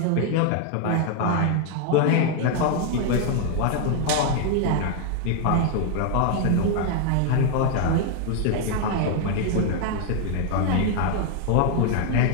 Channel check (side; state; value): both; different; correlation 0.00